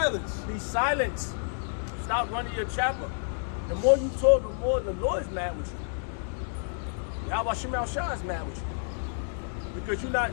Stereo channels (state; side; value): silent; right; digital silence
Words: Be silent. Stop running your chapel. The more you talk, the more the Lord's mad with you. Yahweh Shema Shah is mad with you. Because you're not